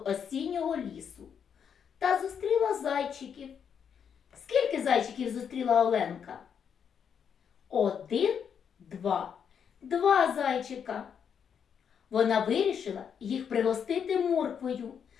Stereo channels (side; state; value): right; quieter; 7.5 dB